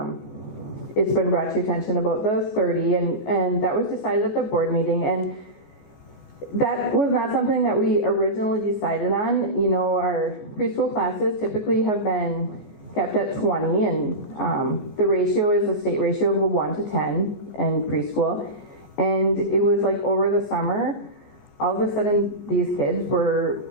it's been brought to your attention about the 30, and that was decided at the board meeting, and that was not something that we originally decided on. Our preschool classes typically have been kept at 20, and the ratio is a state ratio of 1 to 10 in preschool. And it was like over the summer, all of a sudden these kids were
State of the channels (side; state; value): right; late; 14 ms